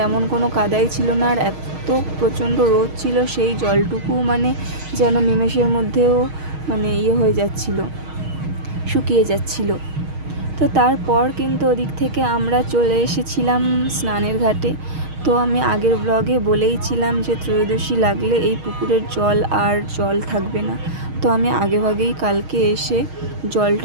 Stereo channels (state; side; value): late; left; 6.4 ms